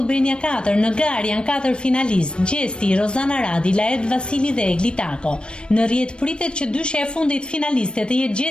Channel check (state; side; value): late; right; 0.055 ms